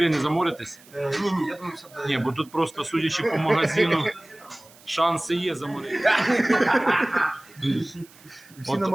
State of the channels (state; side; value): noise; right; hiss, 25 dB below the sound